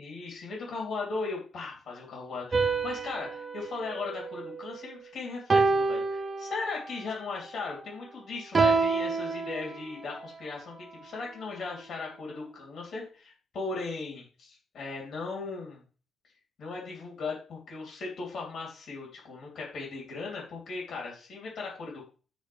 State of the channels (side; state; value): both; normal; correlation 0.78